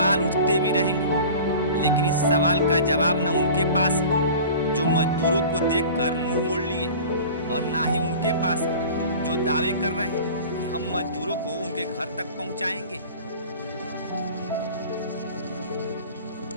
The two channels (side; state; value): both; inverted; correlation -0.40